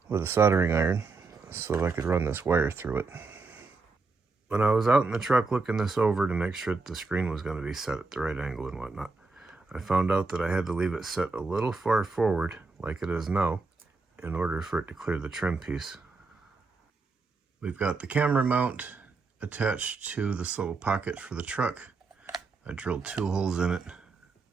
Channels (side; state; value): left; quieter; 4.1 dB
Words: with a soldering iron so that I could run this wire through it. When I was out in the truck looking this over to make sure that the screen was going to be set at the right angle and whatnot, I found out that I had to leave it set a little far forward, like it is now, in order for it to clear the trim piece. We've got the camera mount attached to this little pocket for the truck. I drilled 2 holes in it